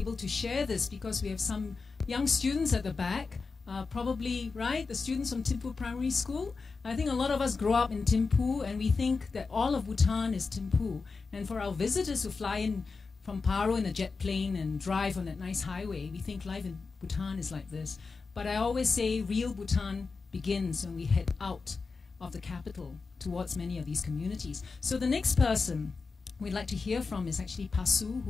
to share this, because we have some young students at the back, probably, right, the students from Thimphu Primary School. I think a lot of us grow up in Thimphu, and we think that all of Bhutan is Thimphu. And for our visitors who fly in from Paro in a jet plane and drive on that nice highway, we think life in Bhutan is like this. But I always say real Bhutan begins when we head out of the capital towards many of these communities. So the next person we'd like to hear from is actually Pasu,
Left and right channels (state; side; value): quieter; right; 4.5 dB